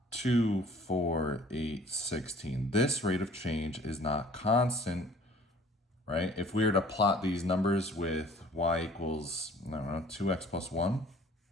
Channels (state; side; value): normal; both; correlation 0.52